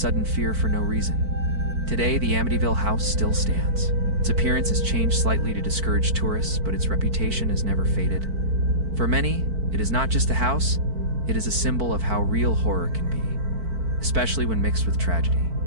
fear for no reason. Today, the Amityville house still stands. Its appearance has changed slightly to discourage tourists, but its reputation has never faded. For many, it is not just a house, it is a symbol of how real horror can be, especially when mixed with tragedy.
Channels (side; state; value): left; late; 4.5 ms